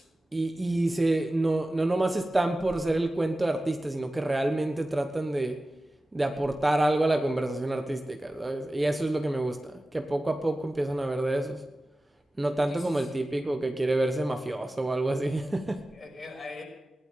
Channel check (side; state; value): both; normal; correlation 0.95